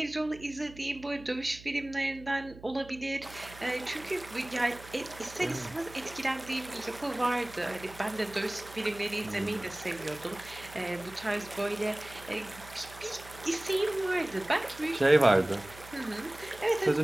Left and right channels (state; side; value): noise; right; hum, 18 dB below the sound